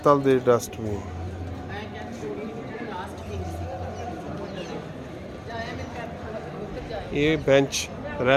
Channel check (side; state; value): both; identical; correlation 1.00